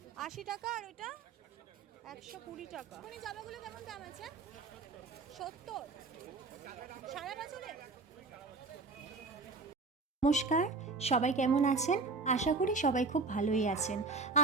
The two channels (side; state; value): left; quieter; 4.0 dB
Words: 80 টাকা আর ওইটা 120 টাকা। মানে জামাগুলো কেমন দাম আছে? 70 সারা বছরে। নমস্কার, সবাই কেমন আছেন? আশা করি সবাই খুব ভালোই আছেন।